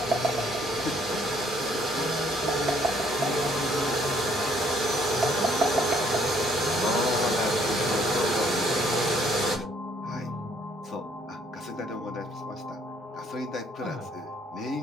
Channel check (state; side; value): normal; both; correlation 0.64